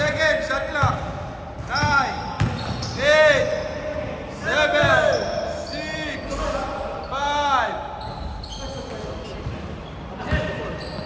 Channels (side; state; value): both; identical; correlation 1.00